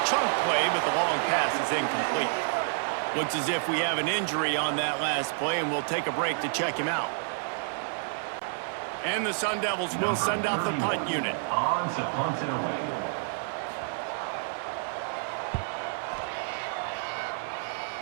chunk play, but the long pass is incomplete. Looks as if we have an injury on that last play, and we'll take a break to check him out. And the Sun Devils will send out the punt unit. On to punt it away.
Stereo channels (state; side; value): silent; left; digital silence